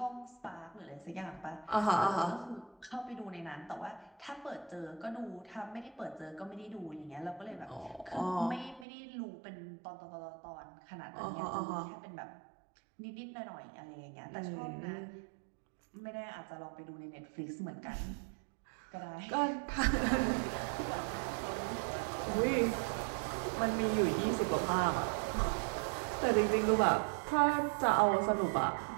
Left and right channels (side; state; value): left; drops out; at 8.8 s